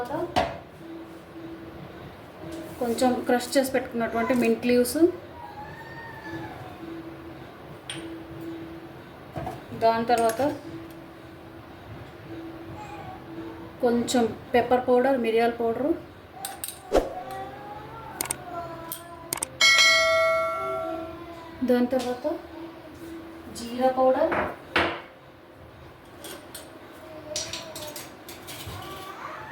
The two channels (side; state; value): both; identical; correlation 1.00